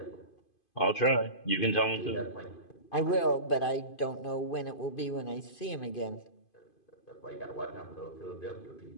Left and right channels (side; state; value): right; late; 2.5 ms